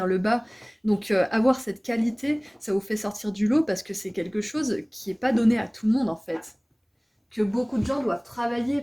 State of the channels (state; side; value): identical; both; correlation 1.00